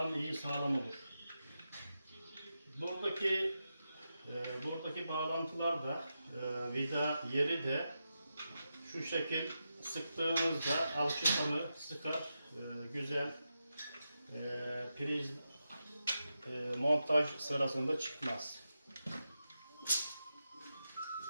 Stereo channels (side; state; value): both; inverted; correlation -0.88